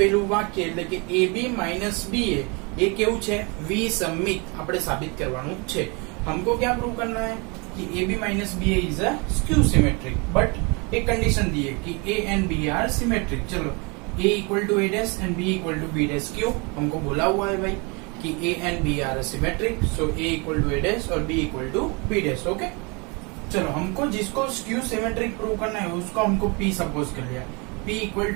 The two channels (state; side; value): quieter; left; 30.3 dB